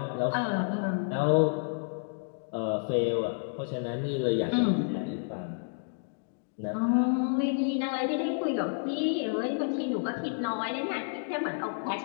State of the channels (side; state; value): right; silent; digital silence